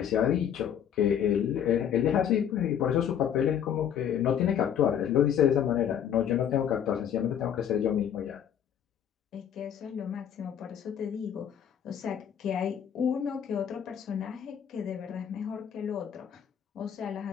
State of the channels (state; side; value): quieter; right; 9.1 dB